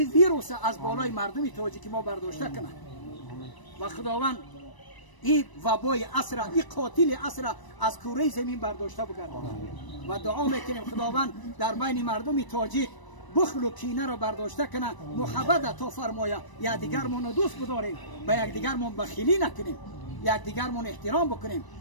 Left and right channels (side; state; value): right; late; 1.0 ms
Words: ویروس از بالای مردمی تاجیک ما برداشته کنه و خداوند این وبای عصر، این قاتل عصر از کره زمین برداشته بگردانه و دعا میکنیم خداوند در بین مردم تاجیک بخل و کینه را برداشته کنه، محبت تا فرمایا یک دیگرمون دوست بداریم، به یک دیگرمون بخیلی نکنیم، یک دیگرمون احترام بکنیم